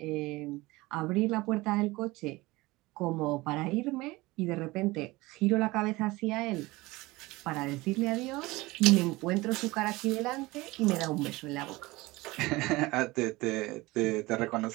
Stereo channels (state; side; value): quieter; left; 21.0 dB